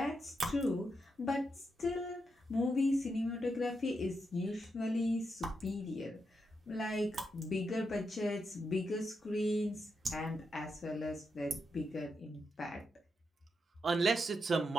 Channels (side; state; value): both; normal; correlation 0.84